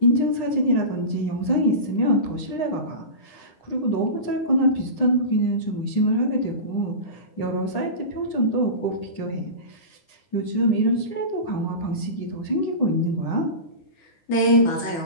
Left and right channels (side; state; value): right; late; 9.8 ms